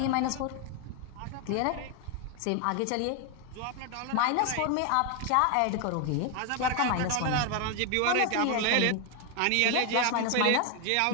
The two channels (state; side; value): different; both; correlation 0.01